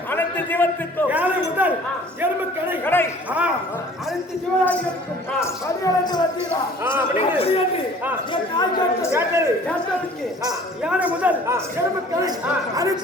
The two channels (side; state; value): both; normal; correlation 0.50